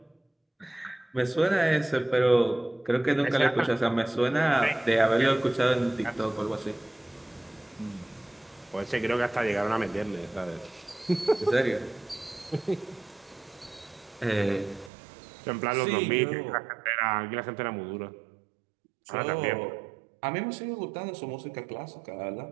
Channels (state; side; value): drops out; left; at 14.9 s